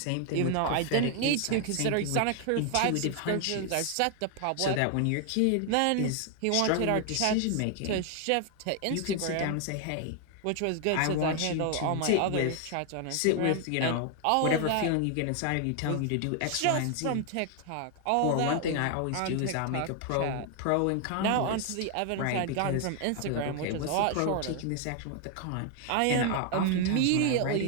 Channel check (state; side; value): different; both; correlation 0.00